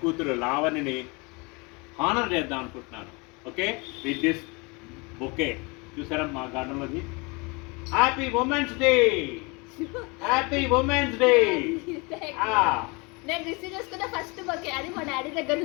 కూతురు లావణిని హానర్ చేద్దాం అనుకుంటున్నాను. Okay, with this bouquet. చూసారా మా గార్డెన్లోది. Happy women's day, happy women's day. నేను రిసీవ్ చేసుకున్న ఫస్ట్ బొకే అది మా డాడీ దగ్గర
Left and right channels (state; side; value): quieter; right; 28.4 dB